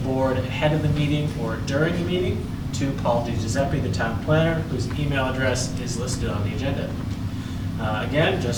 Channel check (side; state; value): both; identical; correlation 1.00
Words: ahead of the meeting or during the meeting to Paul DiGiuseppe, the town planner, whose email address is listed on the agenda. Again,